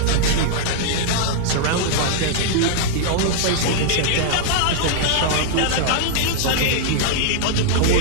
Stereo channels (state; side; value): different; both; correlation -0.01